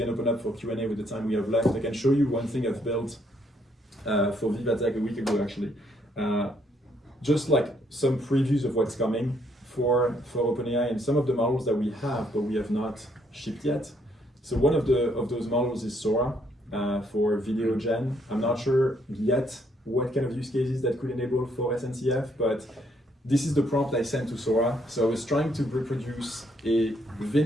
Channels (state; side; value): normal; both; correlation 0.71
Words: open up for Q&A with the time we have left, I can show you one thing I've built for Vivatech a week ago actually. Just like some previews of what's coming for OpenAI and some of the models that we have but we have not shipped yet. So one of those models is Sora for video gen. I'm not sure yet what kind of use cases that could enable for SNCF, but this is the prompt I sent to Sora. So I was trying to reproduce a